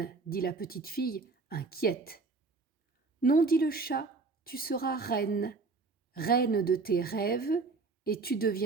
dit la petite fille, inquiète. Non, dit le chat, tu seras reine, reine de tes rêves, et tu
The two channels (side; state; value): left; quieter; 4.0 dB